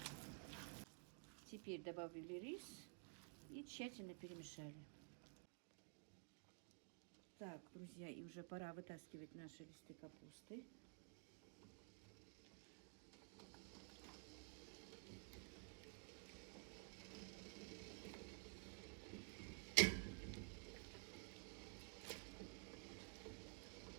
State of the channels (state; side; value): quieter; left; 39.0 dB